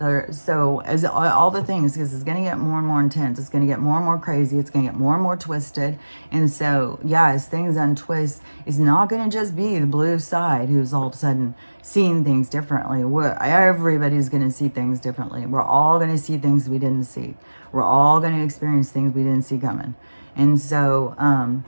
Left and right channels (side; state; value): both; inverted; correlation -1.00